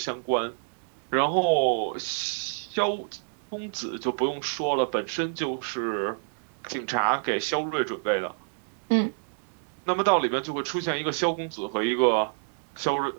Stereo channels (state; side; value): silent; left; 59 dB below the other